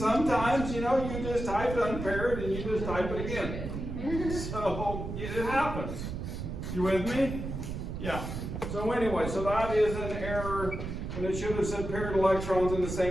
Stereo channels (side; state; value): right; noise; rumble, 6 dB below the sound